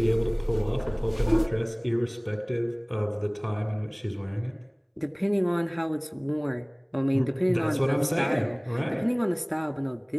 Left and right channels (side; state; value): both; identical; correlation 1.00